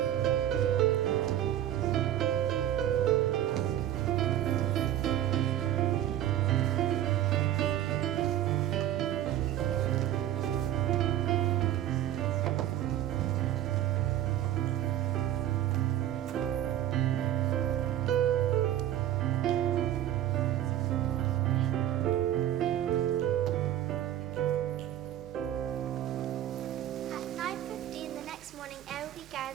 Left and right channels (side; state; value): left; quieter; 12.2 dB